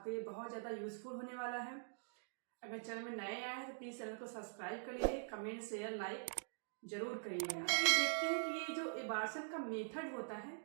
लिए बहुत ज़्यादा यूजफुल होने वाला है। अगर चैनल में नए आए हैं तो प्लीज़ चैनल को सब्सक्राइब कर लीजिए, कमेंट शेयर लाइक जरूर करिएगा। ये देखते हैं कि ये जो एबार्शन का मेथड होता है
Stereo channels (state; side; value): silent; left; digital silence